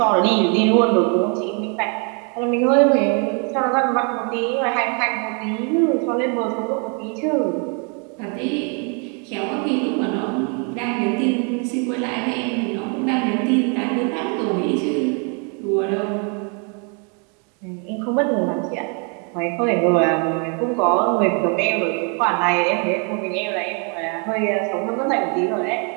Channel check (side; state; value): left; quieter; 37.0 dB